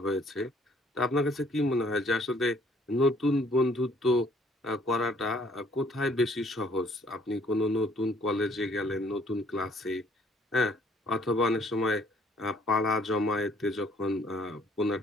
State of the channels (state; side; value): normal; both; correlation 0.61